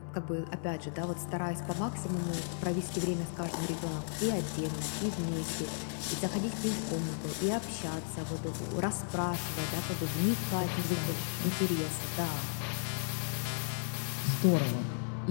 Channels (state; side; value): silent; right; 55 dB below the other